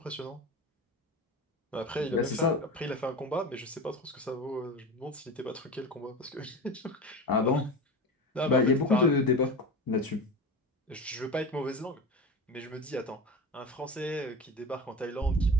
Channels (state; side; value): normal; both; correlation 0.29